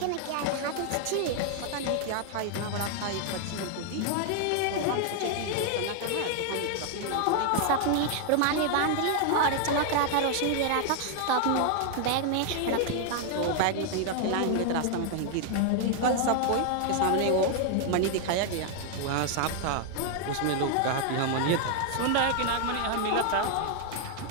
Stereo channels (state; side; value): different; both; correlation 0.00